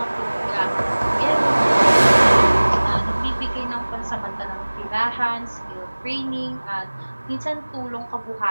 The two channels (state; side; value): inverted; both; correlation -1.00